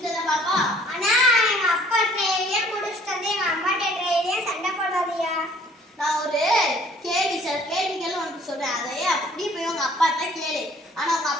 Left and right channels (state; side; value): normal; both; correlation 0.57